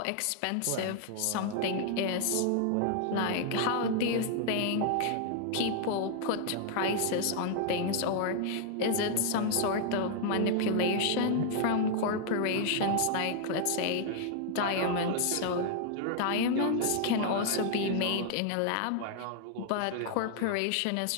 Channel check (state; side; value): different; both; correlation -0.01